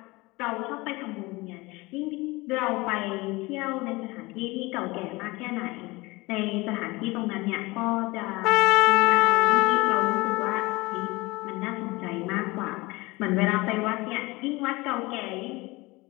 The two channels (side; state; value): right; quieter; 22.6 dB